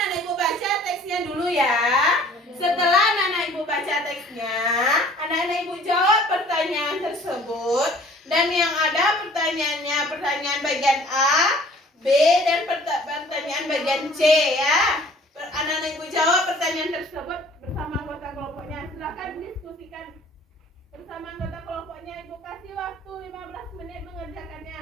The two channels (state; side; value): normal; both; correlation 0.52